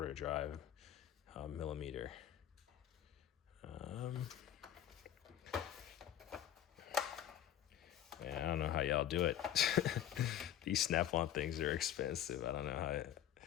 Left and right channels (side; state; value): right; quieter; 11.2 dB